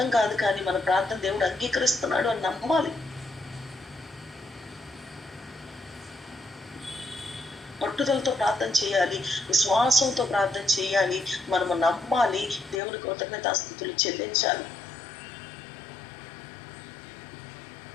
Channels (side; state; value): right; drops out; at 12.8 s